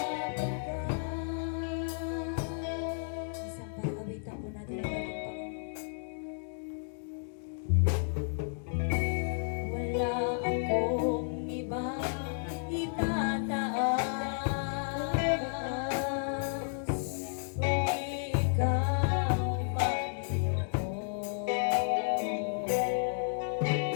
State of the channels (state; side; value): silent; right; digital silence